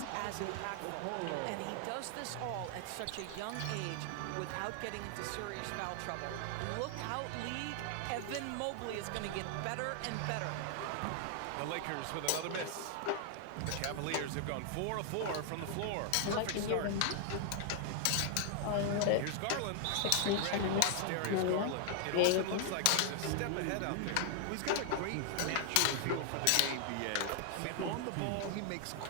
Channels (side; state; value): both; different; correlation 0.00